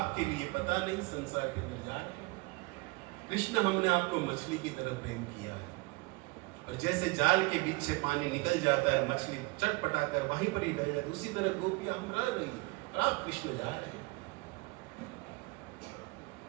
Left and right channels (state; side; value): quieter; left; 25.3 dB